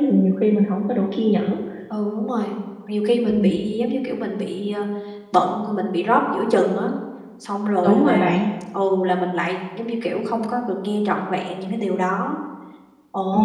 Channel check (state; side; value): identical; both; correlation 1.00